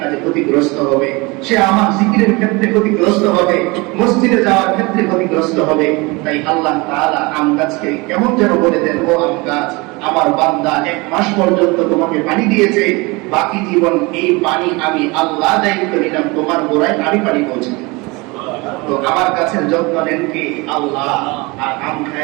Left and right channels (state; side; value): quieter; left; 25.3 dB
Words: কাজে ক্ষতিগ্রস্ত হবে, সে আমার জিকিরের ক্ষেত্রে ক্ষতিগ্রস্ত হবে, মসজিদে যাওয়ার ক্ষেত্রে ক্ষতিগ্রস্ত হবে। তাই আল্লাহ তাআলা আম গাছকে কেমন যেন বলে দেন, ও আম গাছ, আমার বান্দা 1 মাস পর্যন্ত তোমাকে পানি দিয়েছে, বাকি জীবন এই পানি আমি আল্লাহ দায়িত্ব নিলাম, তোমার গোড়ায় আমি পানি পৌঁছে। তো আমার গাছের যত্ন নেন কে? আল্লাহ, আর আম